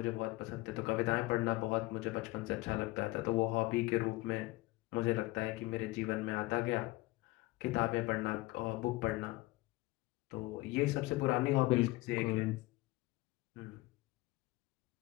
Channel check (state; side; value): quieter; right; 20.5 dB